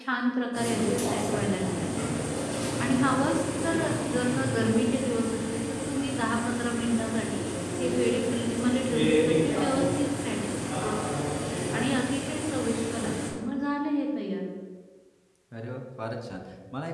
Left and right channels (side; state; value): both; identical; correlation 1.00